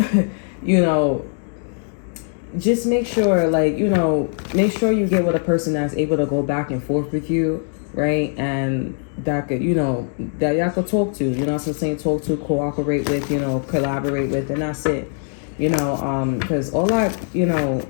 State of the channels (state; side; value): silent; right; 62 dB below the other